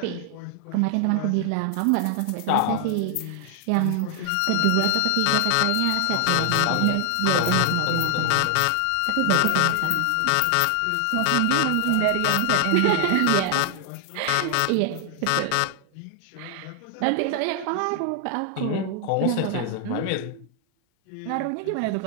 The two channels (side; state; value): both; different; correlation 0.00